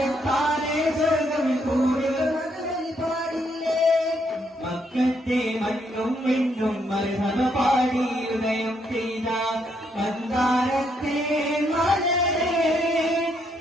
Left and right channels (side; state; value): both; normal; correlation 0.74